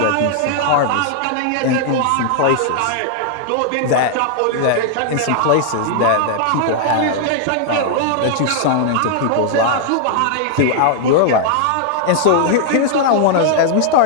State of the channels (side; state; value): both; different; correlation 0.00